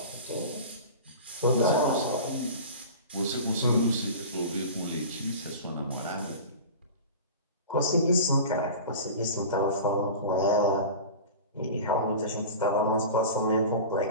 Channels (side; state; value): both; inverted; correlation -0.34